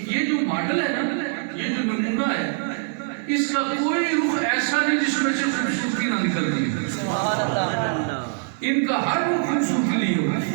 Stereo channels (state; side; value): silent; left; 63 dB below the other